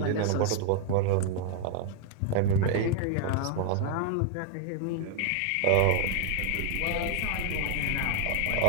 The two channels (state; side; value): different; both; correlation 0.00